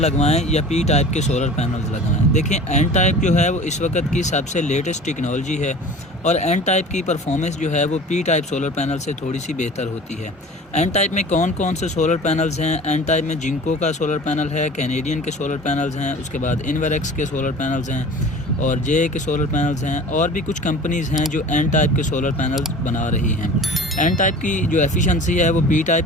या पी टाइप के सोलर पैनल्स लगवाएं। देखिए, एन टाइप जो है वो इस वक्त की सबसे लेटेस्ट टेक्नोलॉजी है और एन टाइप की परफॉर्मेंस जो है वो पी टाइप सोलर पैनल से थोड़ी सी बेहतर होती है। एन टाइप में कौन कौन से सोलर पैनल्स हैं? एन टाइप में जिंको का सोलर पैनल है, कैनेडियन के सोलर पैनल्स हैं, उसके बाद इन्वेरेक्स के सोलर पैनल्स हैं और जे के सोलर पैनल्स हैं, और भी कुछ कंपनीज़ हैं जो एन टाइप के सोलर पैनल्स बना रही हैं। एन टाइप की जो एफिशिएंसी है वो पी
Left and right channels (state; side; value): normal; both; correlation 0.41